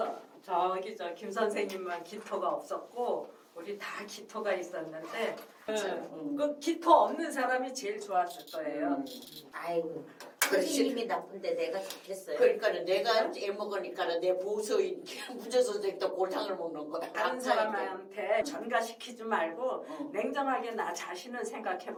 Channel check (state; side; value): identical; both; correlation 1.00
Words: 저 김 선생님만 기토가 없었고 우리 다 기토가 있었는데 그 기토 없는 사람이 제일 좋았을 거예요. 아이고 선생님이 나쁜데 내가 좋겠어요. 그러니까 내가 애먹으니까 내 보수인 문제선생도 골탕을 먹는 거야. 다른 사람한테 전가시키지 말고 냉정하게 나 자신을